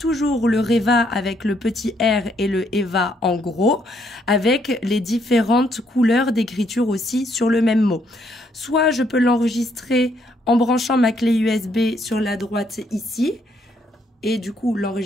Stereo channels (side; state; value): both; normal; correlation 0.71